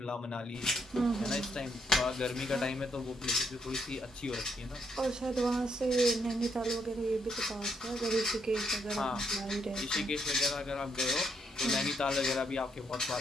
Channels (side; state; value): both; normal; correlation 0.74